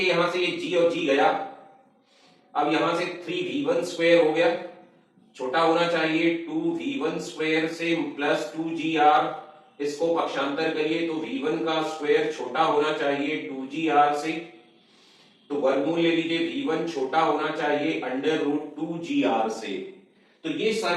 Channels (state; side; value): identical; both; correlation 1.00